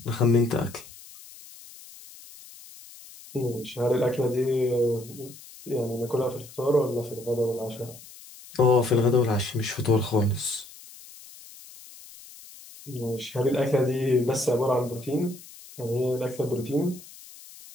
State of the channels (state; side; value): noise; left; hiss, 19 dB below the sound